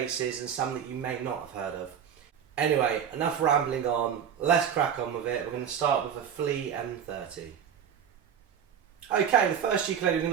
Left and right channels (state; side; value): quieter; left; 8.3 dB